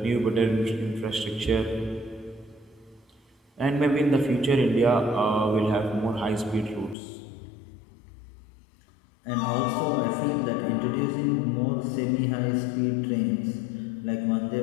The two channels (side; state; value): right; drops out; at 7.0 s